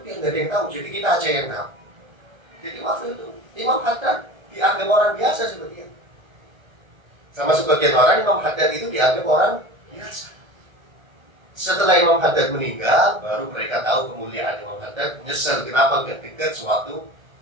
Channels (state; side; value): late; left; 1.2 ms